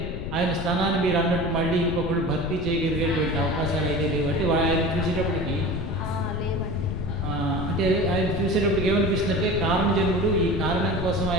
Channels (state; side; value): noise; left; rumble, 5 dB below the sound